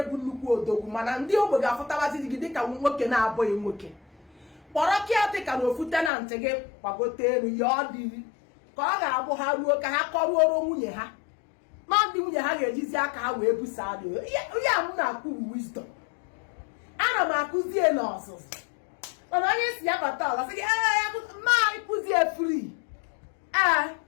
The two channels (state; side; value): drops out; right; at 6.1 s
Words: nnukwu odogwu mana ndị ogbe ga-afụtabazi di gị dịka nwoke na-abụghị nwoke kpọrọ kịatịka na ofu tenantị gị gbagote elu ya ọ dịrị ka ọ ga-abụ ha ruo ka ha kọruoro nwunye ha ma ndị nwunye ha ga-ejizi aka ha wee busa adị ya m na-akwụ wisdom ana m akụzie n'ọzụzụ mana onye si ya bata ọla sị gị ma ịkụzie free